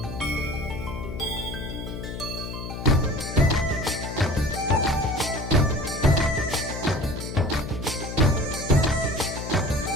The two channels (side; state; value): left; noise; hum, 7 dB below the sound